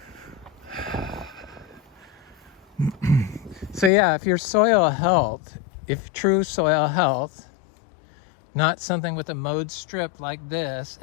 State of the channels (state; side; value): drops out; right; at 3.9 s